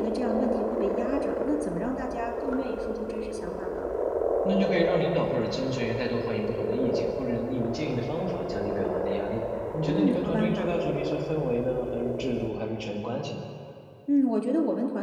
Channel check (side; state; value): both; identical; correlation 1.00